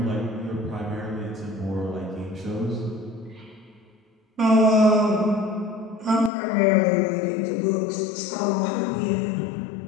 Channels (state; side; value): drops out; right; at 6.3 s